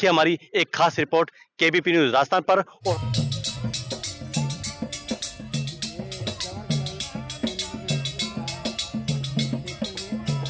हमारी एक खास रिपोर्ट केबीपी न्यूज राजस्थान पर।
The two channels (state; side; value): identical; both; correlation 1.00